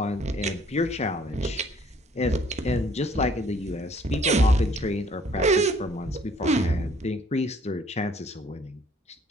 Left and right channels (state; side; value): normal; both; correlation 0.60